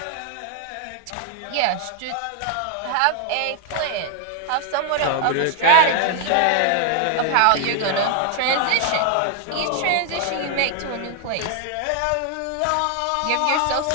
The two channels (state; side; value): different; both; correlation 0.00